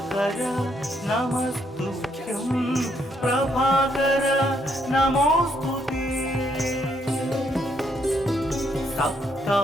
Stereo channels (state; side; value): normal; both; correlation 0.73